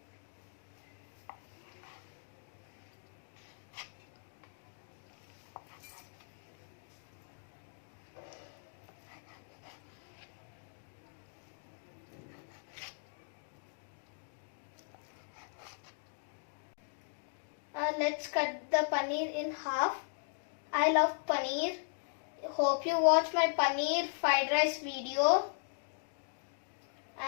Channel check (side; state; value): right; silent; digital silence